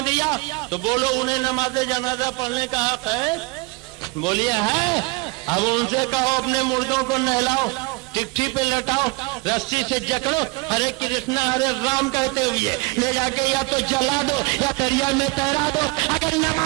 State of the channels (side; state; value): left; quieter; 26.0 dB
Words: دیا تو بولو انہیں نماز جنازہ پڑھنے کا حق ہے؟ بولیے ہے. اب ان سے کہو اپنے مردوں کو نہلاؤ، ٹکٹھی پہ لٹاؤ، رسی سے جکڑو، ہرے کرشنا ہرے رام کہتے ہوئے لے جا کے یا تو جلا دو یا دریا میں تیرا دو. اگر